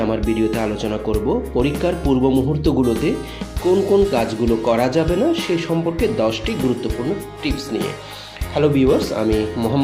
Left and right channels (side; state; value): both; identical; correlation 1.00